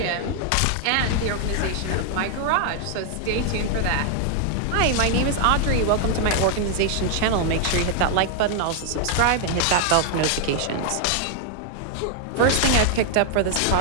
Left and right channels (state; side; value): different; both; correlation 0.00